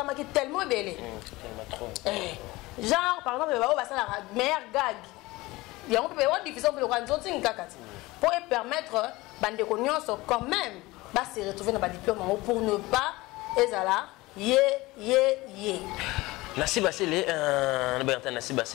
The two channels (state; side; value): quieter; right; 20.5 dB